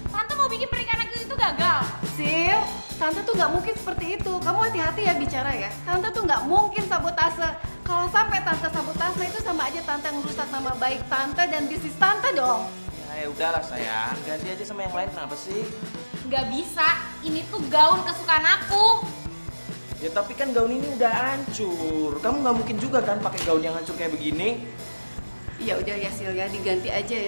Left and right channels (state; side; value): inverted; both; correlation -1.00